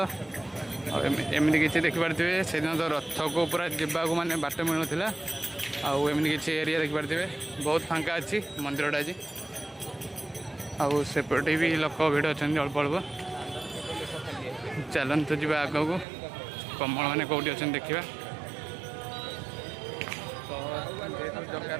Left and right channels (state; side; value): drops out; left; at 16.1 s